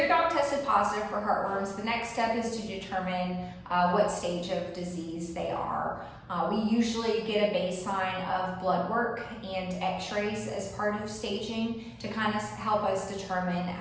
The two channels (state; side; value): identical; both; correlation 1.00